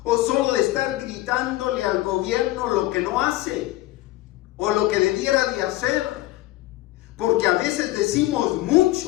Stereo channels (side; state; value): right; quieter; 17.5 dB